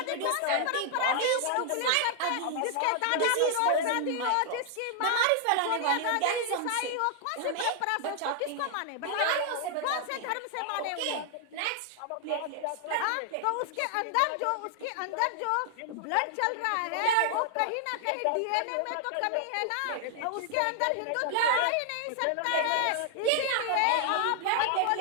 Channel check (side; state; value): both; different; correlation 0.00